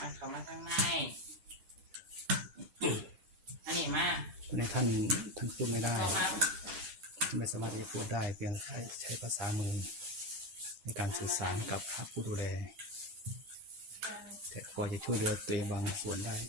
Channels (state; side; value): late; left; 9.0 ms